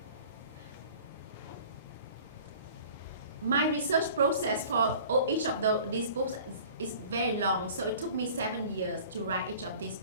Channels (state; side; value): inverted; both; correlation -0.46